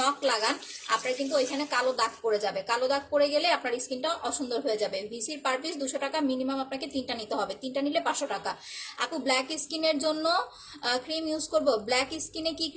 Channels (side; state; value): both; identical; correlation 1.00